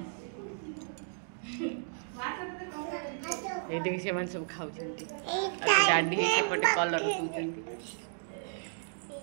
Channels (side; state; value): left; silent; digital silence